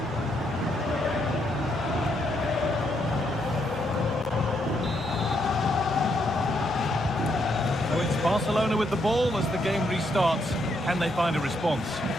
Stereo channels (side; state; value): both; normal; correlation 0.76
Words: So it's Barcelona with the ball as the game restarts. Can they find a response?